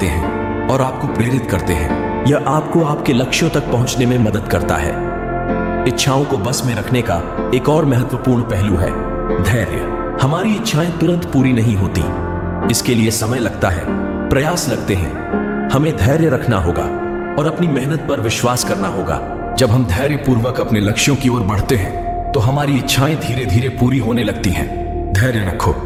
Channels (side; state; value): both; identical; correlation 1.00